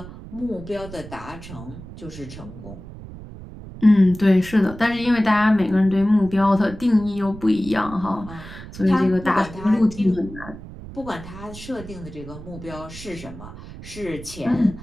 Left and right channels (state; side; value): noise; right; rumble, 14 dB below the sound